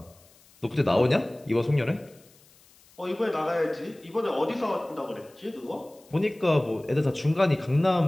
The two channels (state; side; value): noise; left; hiss, 28 dB below the sound